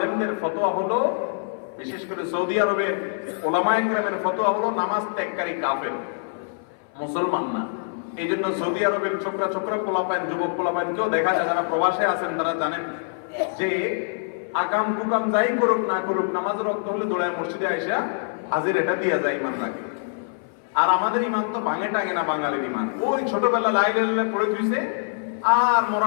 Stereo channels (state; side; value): silent; right; 57 dB below the other